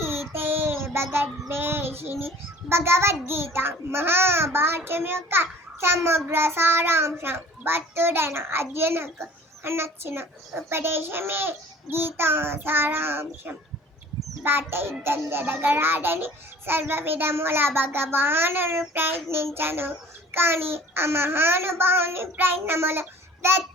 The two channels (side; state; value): both; normal; correlation 0.48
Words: భగద్వేషిణి. భగవద్గీత మహాభారతం యొక్క సమగ్ర సారాంశం. భక్తుడైన అర్జునకు నచ్చిన ఉపదేశమే గీతా సారాంశం. బాట యుద్ధం జరగరాడని సర్వ విధముల భగవానుడు ప్రయత్నించను, కానీ ఆ మహానుభావుని ప్రయత్నములు